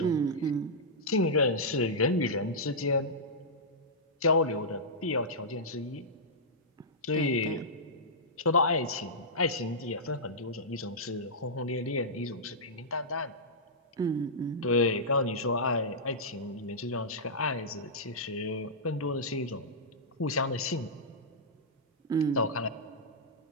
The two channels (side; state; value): both; normal; correlation -0.13